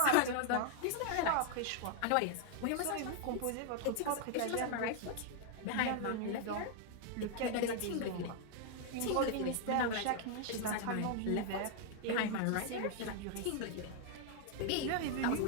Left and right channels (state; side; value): different; both; correlation 0.00